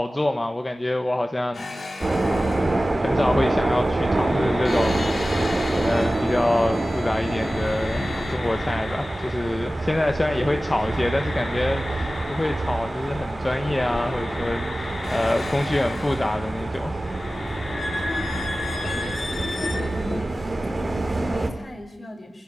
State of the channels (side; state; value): both; normal; correlation 0.96